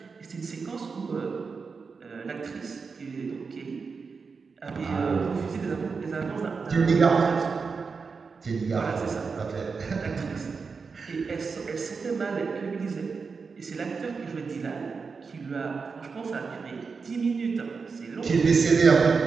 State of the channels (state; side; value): quieter; left; 5.0 dB